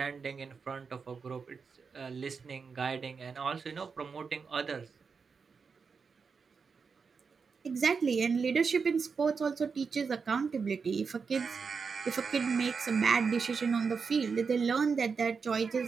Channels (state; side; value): quieter; left; 5.4 dB